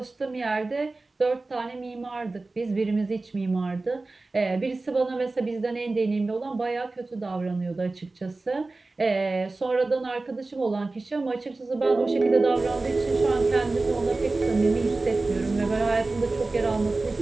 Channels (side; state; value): left; quieter; 3.3 dB